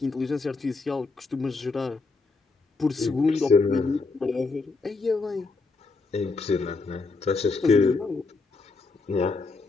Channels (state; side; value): quieter; right; 3.9 dB